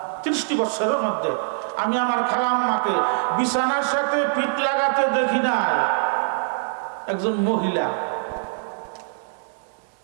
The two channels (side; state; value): left; silent; digital silence